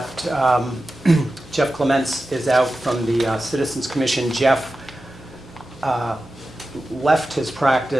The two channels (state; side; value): normal; both; correlation 0.93